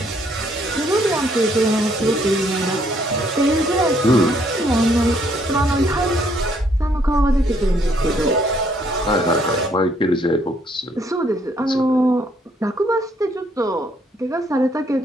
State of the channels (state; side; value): normal; both; correlation 0.68